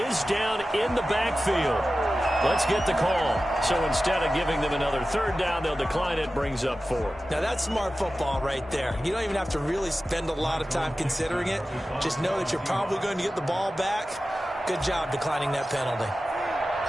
down in the backfield. Let's get the call. So instead of giving them another 3rd down, they'll decline it, brings up 4. Now that's smart football right there. You don't even have to really spend a lot of time considering it. Just know that you're probably going to get the ball back. Good job declining that penalty.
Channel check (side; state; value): both; normal; correlation 0.94